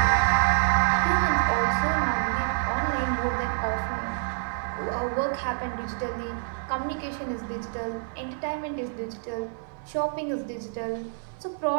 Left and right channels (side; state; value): left; silent; digital silence